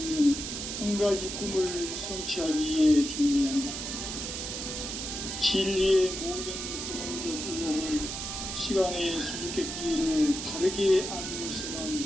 한 가지 꿈을 성취하기 위해 존재한다. 진리의 모든 근원적 의혹은 시간의 수수께끼를 바르게 알므로서만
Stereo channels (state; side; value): noise; right; hiss, 5 dB below the sound